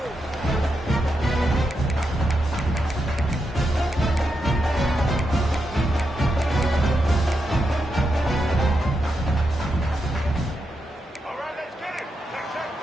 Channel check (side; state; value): both; normal; correlation 0.85